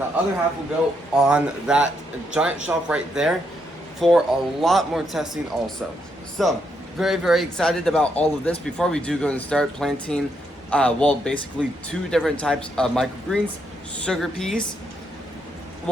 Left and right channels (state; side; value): normal; both; correlation 0.77